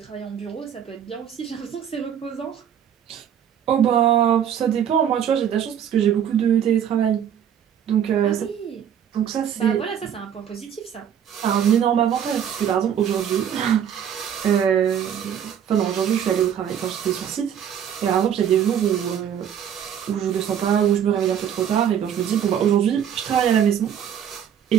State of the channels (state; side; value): quieter; left; 9.0 dB